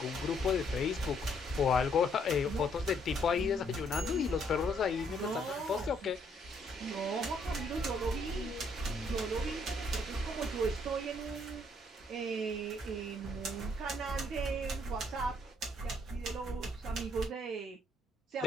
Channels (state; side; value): normal; both; correlation 0.68